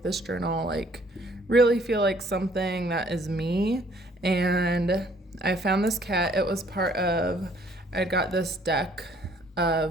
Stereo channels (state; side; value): normal; both; correlation 0.61